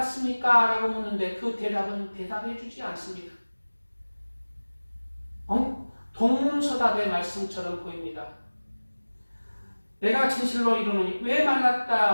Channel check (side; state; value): both; inverted; correlation -1.00